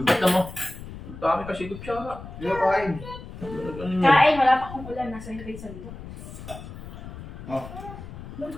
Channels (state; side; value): noise; left; rumble, 13 dB below the sound